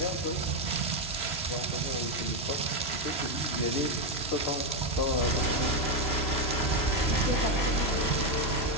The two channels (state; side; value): late; right; 3.0 ms